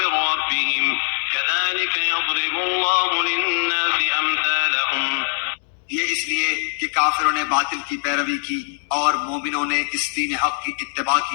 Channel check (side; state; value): right; silent; 55 dB below the other